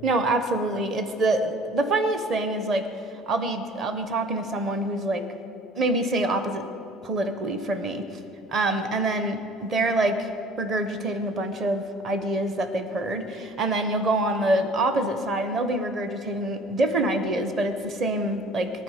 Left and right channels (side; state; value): both; normal; correlation 0.49